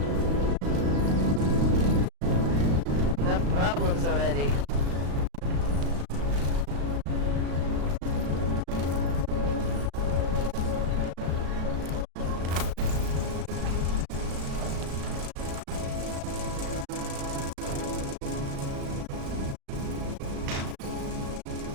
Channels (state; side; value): late; left; 35 ms